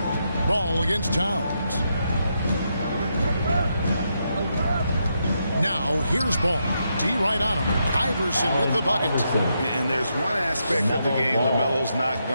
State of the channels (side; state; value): both; inverted; correlation -0.81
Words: Ball against Towns. Now here's Ball. D right on him. Iverson with the bucket. And there's one aspect of the game LaMelo's not